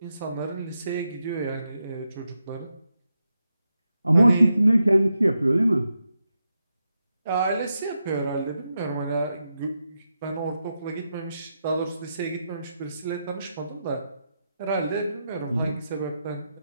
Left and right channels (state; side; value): inverted; both; correlation -0.86